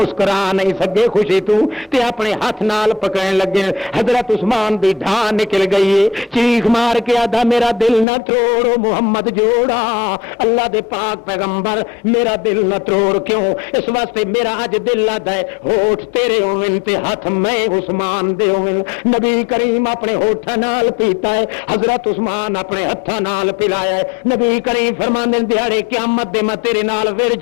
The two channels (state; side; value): drops out; right; at 8.1 s